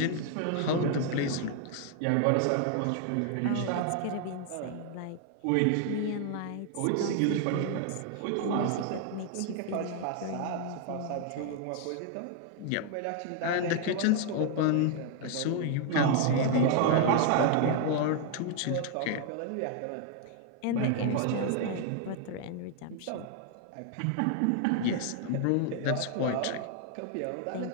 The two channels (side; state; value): both; different; correlation 0.00